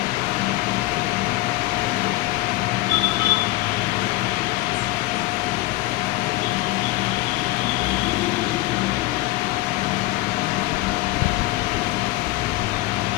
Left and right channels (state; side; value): quieter; right; 18.3 dB